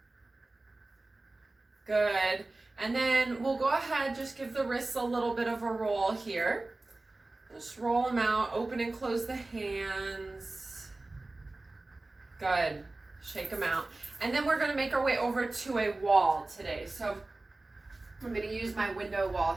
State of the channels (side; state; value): left; quieter; 3.0 dB